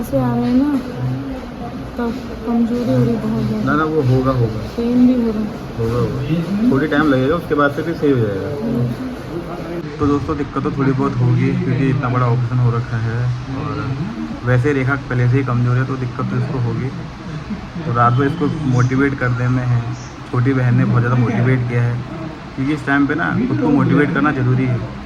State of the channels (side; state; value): both; identical; correlation 1.00